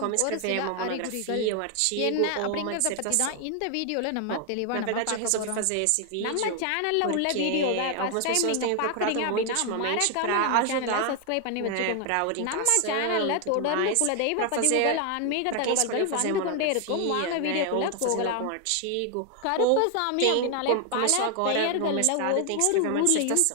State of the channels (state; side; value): different; both; correlation 0.00